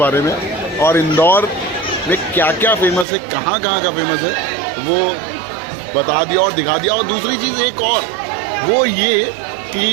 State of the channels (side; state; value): left; drops out; at 3.1 s